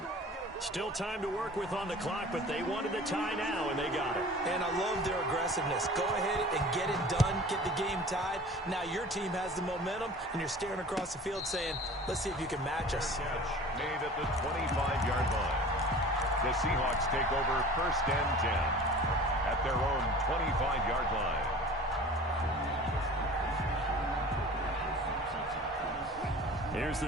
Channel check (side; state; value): both; normal; correlation 0.42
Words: Still time to work with on the clock, but they wanted the tie now, and they got it. And I love their aggressiveness. Go ahead and get it done, get the game tied. Now your team has the momentum, and you're staring across the field saying, let's see if you can match us. Made at the 25-yard line. The Seahawks take over 1st and 10 at their own 25-yard line. Here's